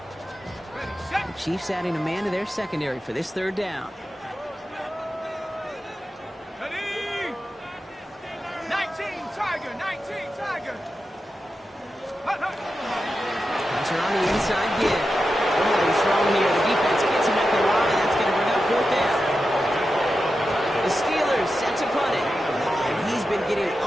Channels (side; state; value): both; normal; correlation 0.90